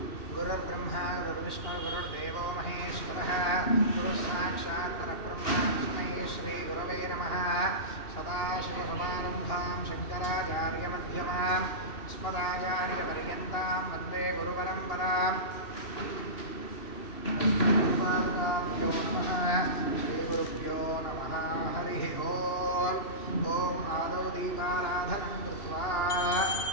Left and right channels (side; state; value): right; late; 2.7 ms